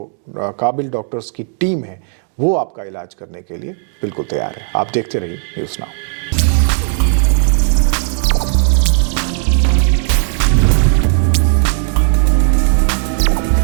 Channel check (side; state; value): left; silent; digital silence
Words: काबिल डॉक्टर्स की टीम है वो आपका इलाज करने के लिए बिल्कुल तैयार है. आप देखते रहिए न्यूज़ नाउ.